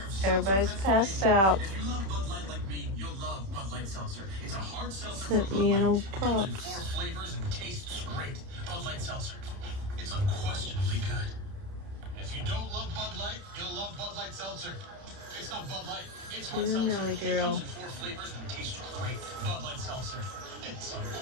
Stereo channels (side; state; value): left; late; 31 ms